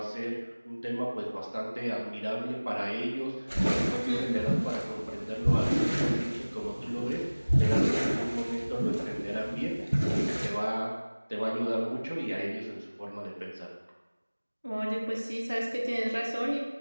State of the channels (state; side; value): inverted; both; correlation -1.00